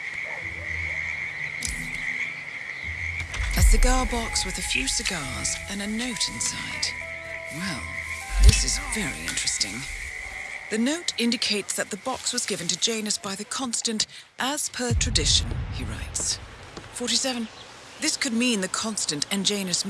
A cigar box with a few cigars and a note inside. Well, this is very interesting. The note indicates that the box was given to Janus by the Constant as per tradition, he writes. 47. This could mean the Constant and Janus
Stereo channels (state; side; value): identical; both; correlation 1.00